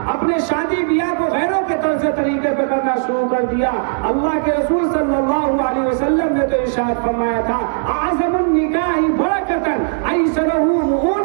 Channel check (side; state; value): left; silent; digital silence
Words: اپنے شادی بیاہ کو غیروں کے طرز طریقے پہ کرنا شروع کر دیا. اللہ کے رسول صلی اللہ علیہ وسلم نے تو ارشاد فرمایا تھا اعظم النکاح برکتاً ایسرہ